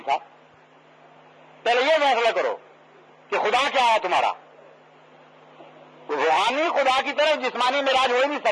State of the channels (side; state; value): both; identical; correlation 1.00